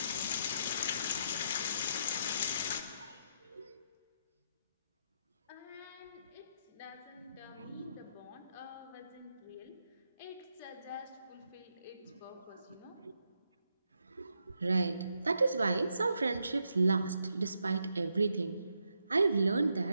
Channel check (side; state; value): both; inverted; correlation -0.80